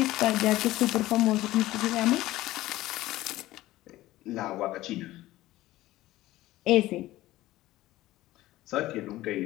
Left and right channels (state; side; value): quieter; right; 16.5 dB